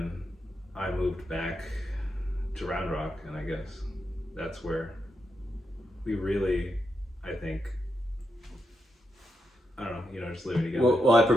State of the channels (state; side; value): normal; both; correlation 0.84